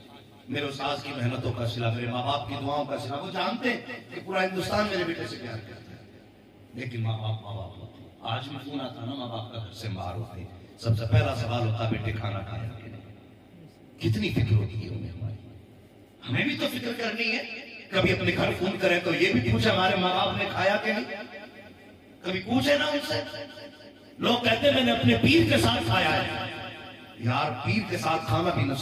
میرے استاذ کی محنتوں کا صلہ، میرے ماں باپ کی دعاؤں کا صلہ. وہ جانتے ہیں کہ پورا ہندوستان میرے بیٹے سے پیار کرتا ہے، لیکن ماں باپ ہوتے. آج بھی فون آتا نا ماں باپ کا گھر سے باہر ہوتے، سب سے پہلا سوال ہوتا بیٹے کھانا کھایا کہ نہیں. کتنی فکر ہوتی ہے انہیں ہماری. ہمیں بھی تو فکر کرنی ہے. کبھی اپنے گھر فون کریں تو یہ بھی پوچھے ہمارے ماں باپ نے کھایا کہ نہیں. کبھی پوچھے نا ان سے. لوگ کہتے ہیں میں نے اپنے پیر کے ساتھ کھایا ہے. یار پیر کے ساتھ کھانا بھی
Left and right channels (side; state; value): both; identical; correlation 1.00